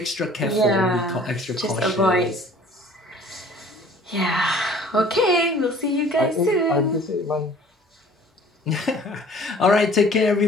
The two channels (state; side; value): normal; both; correlation 0.51